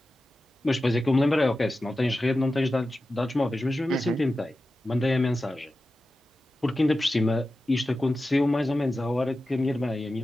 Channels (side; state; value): both; normal; correlation 0.93